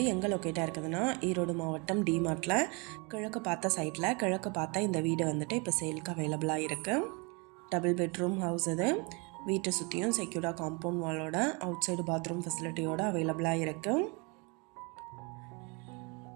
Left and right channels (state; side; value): quieter; left; 30.7 dB